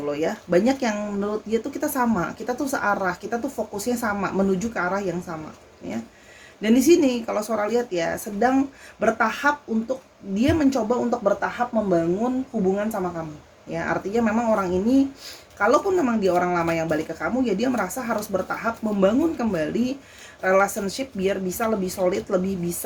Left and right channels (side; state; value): both; identical; correlation 1.00